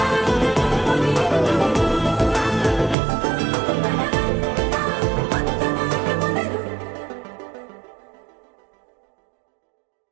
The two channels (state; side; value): drops out; left; at 3.0 s